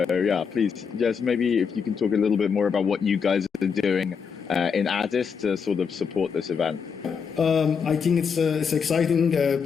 yeah, please, just maybe if you can talk a little bit more about what you guys are doing in Addis to sort of support this event. I think it's exciting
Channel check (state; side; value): quieter; right; 6.3 dB